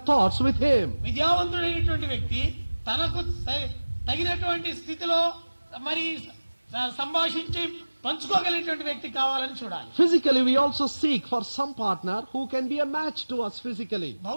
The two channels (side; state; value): both; inverted; correlation -1.00